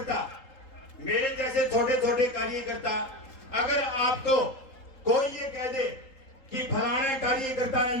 मेरे जैसे छोटे छोटे कार्यकर्ता, अगर आपको कोई ये कह दे कि फलाना कार्यकर्ता ने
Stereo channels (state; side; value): late; right; 3.8 ms